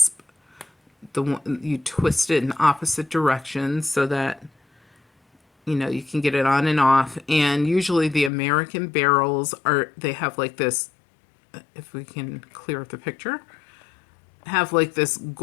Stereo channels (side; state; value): right; drops out; at 8.3 s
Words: The one you twist it in opposite directions so that you can get it on and off. And usually the American barrels they have like this, if we can clear up the picture, have like this